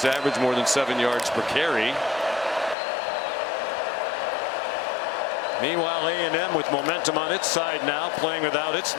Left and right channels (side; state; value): right; drops out; at 2.8 s